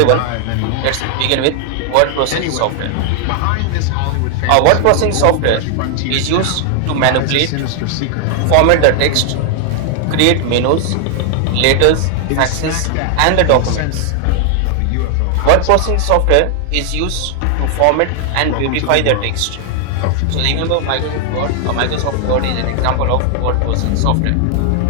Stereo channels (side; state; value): both; different; correlation 0.00